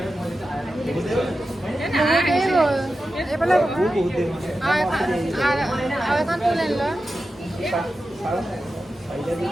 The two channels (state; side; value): normal; both; correlation 0.92